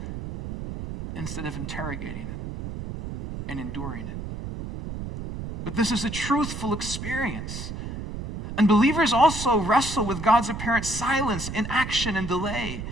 instead of interrogating it and enduring it. But this is a truthful experience. And believers also wrestle with God's apparent silence, inaction, and delay.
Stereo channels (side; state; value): right; noise; rumble, 7 dB below the sound